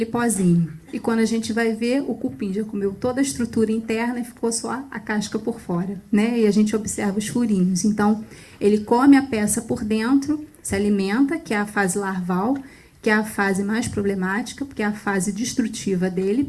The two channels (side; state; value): both; identical; correlation 1.00